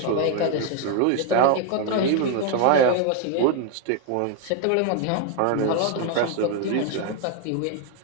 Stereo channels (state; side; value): different; both; correlation 0.01